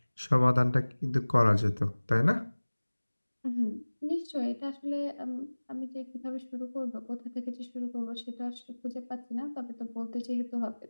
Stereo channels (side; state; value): both; inverted; correlation -1.00